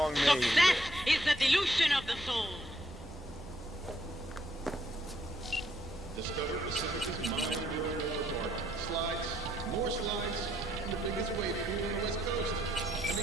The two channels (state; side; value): normal; both; correlation 0.71